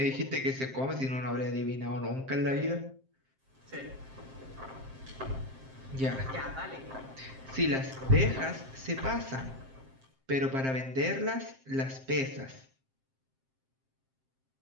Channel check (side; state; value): left; late; 7.6 ms